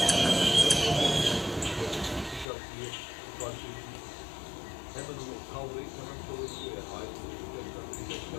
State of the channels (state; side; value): drops out; right; at 2.5 s